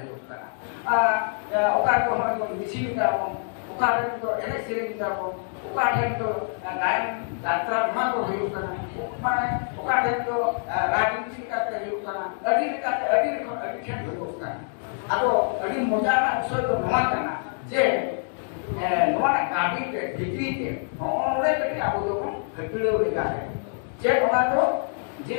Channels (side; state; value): right; silent; 61 dB below the other